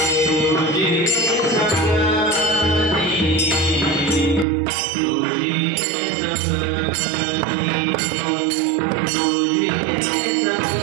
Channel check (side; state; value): left; drops out; at 4.5 s